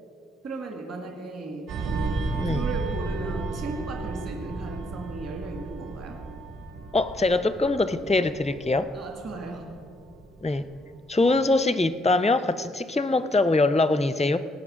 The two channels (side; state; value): both; normal; correlation 0.72